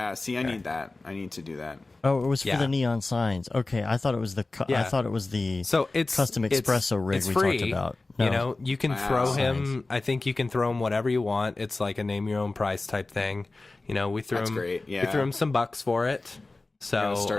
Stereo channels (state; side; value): quieter; right; 3.3 dB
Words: See, I need that. I need to do that. Oh, it was for Yeah. the neon signs. Okay, I thought it was the. Yeah. I thought it was the. So it's custom espresso rig it's we free. talked about. You No. know, you can Wow. throw him. Signs. I think you can throw him whatever you want. It's like a name your own price type thing. You know, we threw That's him. great, We yeah. threw him some bucks for it. So I'll